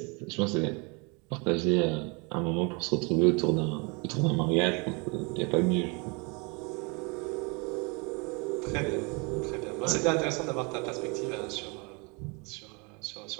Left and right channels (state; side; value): quieter; left; 30.9 dB